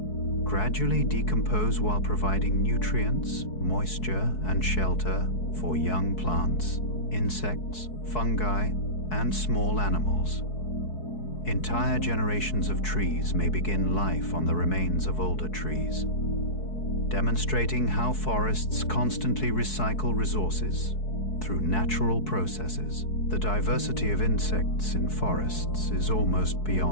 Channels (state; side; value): late; right; 4.6 ms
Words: gradually decompose while providing nutrients, moisture, and shelter for young plants, insects, fungi, and small animals. Entire generations of trees may begin life on the remains of older trees, demonstrating how forests constantly recycle resources through natural processes. The diversity of insects in forests is almost